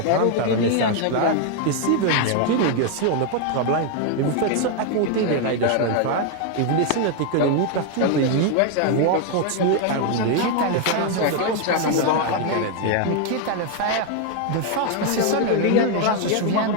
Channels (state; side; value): different; both; correlation 0.00